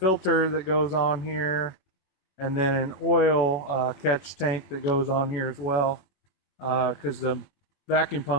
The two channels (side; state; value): right; late; 21 ms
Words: that goes on here, and then an oil catch tank that goes on here as well, because the vacuum